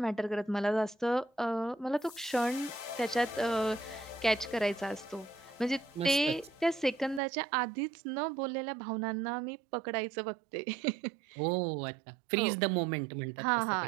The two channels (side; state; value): left; drops out; at 7.2 s